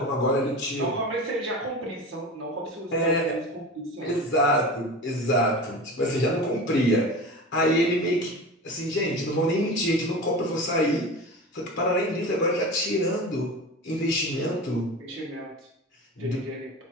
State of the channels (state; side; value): normal; both; correlation 0.31